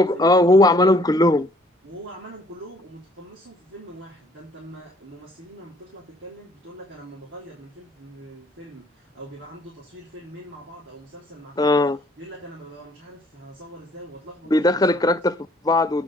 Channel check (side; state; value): both; normal; correlation 0.60